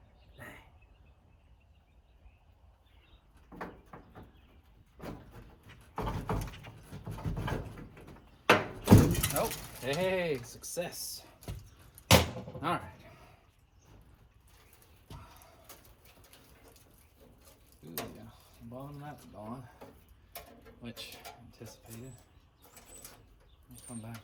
Oh, hey, success. All right. Ooh, yeah. The bottom of that's gone, which anticipated. I'll come back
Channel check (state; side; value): identical; both; correlation 1.00